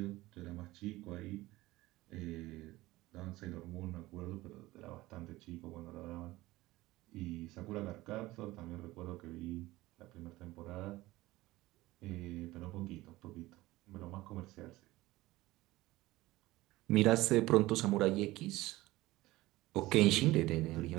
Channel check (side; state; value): left; quieter; 18.5 dB